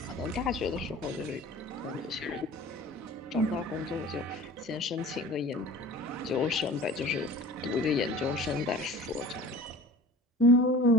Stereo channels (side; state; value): both; normal; correlation 0.42